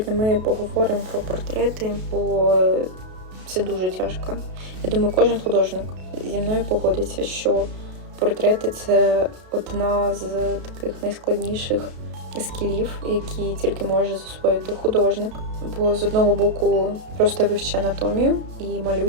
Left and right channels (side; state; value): left; late; 33 ms